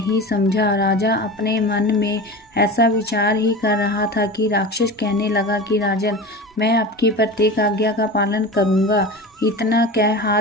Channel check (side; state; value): both; normal; correlation 0.30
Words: समझा। राजा अपने मन में ऐसा विचार ही कर रहा था कि राक्षस कहने लगा कि राजन, मैं आपकी प्रत्येक आज्ञा का पालन करूंगा। इतना कह